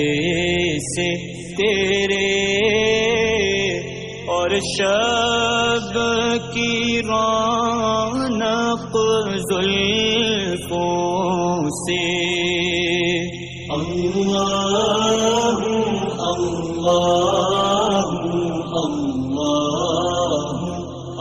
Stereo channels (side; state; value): both; identical; correlation 1.00